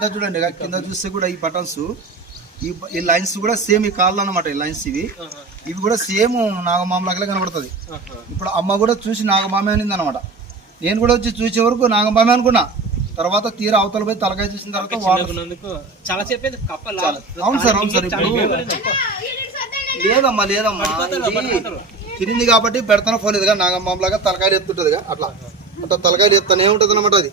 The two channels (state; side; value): quieter; left; 3.8 dB